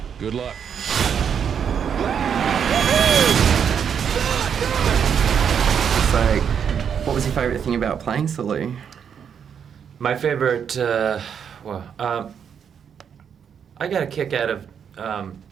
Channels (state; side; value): quieter; left; 7.6 dB